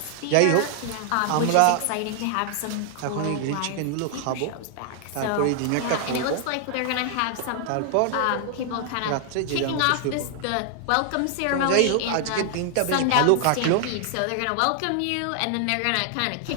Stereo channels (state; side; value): different; both; correlation 0.00